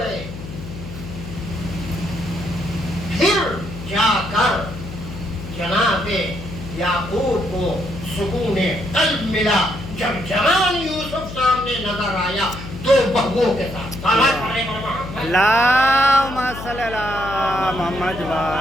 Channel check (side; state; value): left; noise; hum, 11 dB below the sound